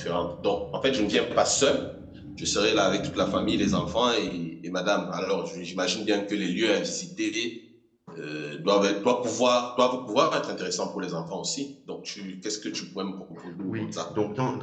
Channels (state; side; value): identical; both; correlation 1.00